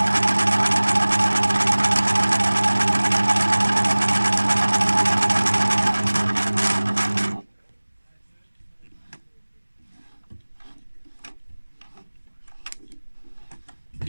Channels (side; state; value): both; inverted; correlation -1.00